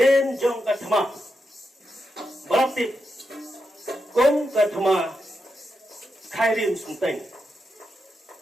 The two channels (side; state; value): both; normal; correlation 0.86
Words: jong katma berarti kong katma khairim sunteng